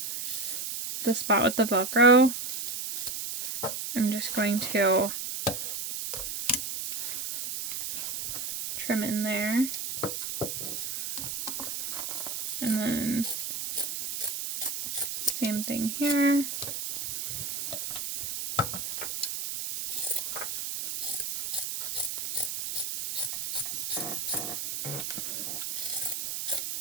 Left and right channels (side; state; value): right; noise; hiss, 4 dB below the sound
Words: the spot with the Velcro, I'm just going to trim in there. And then same thing here.